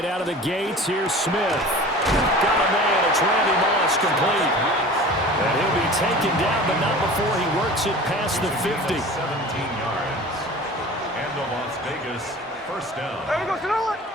out of the gates, here's Smith. Got a man, it's Randy Moss, complete. And he'll be taken down, but not before he works it past the 50. 17 yards. And the Las Vegas first down.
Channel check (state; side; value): normal; both; correlation 0.40